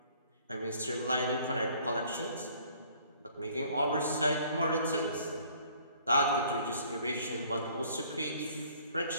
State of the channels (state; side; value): inverted; both; correlation -0.57